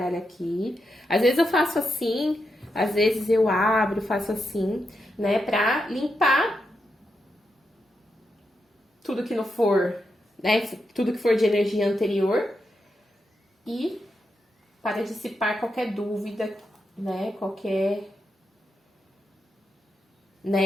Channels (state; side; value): normal; both; correlation 0.85